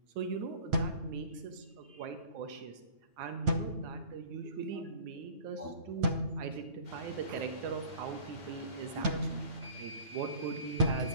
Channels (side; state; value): left; late; 9.1 ms